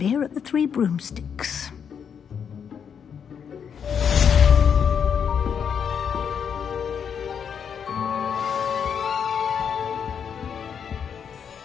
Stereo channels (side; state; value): right; quieter; 7.4 dB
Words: at the Three Broomsticks.